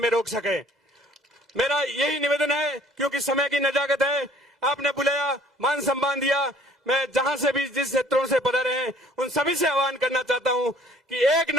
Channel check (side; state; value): both; normal; correlation 0.56